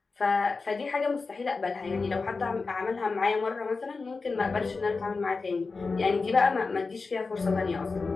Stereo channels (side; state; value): right; quieter; 4.2 dB